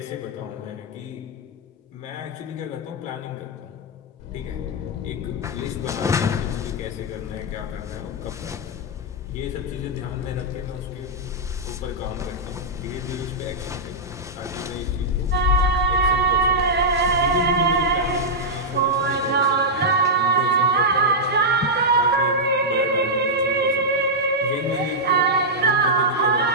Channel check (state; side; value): normal; both; correlation -0.07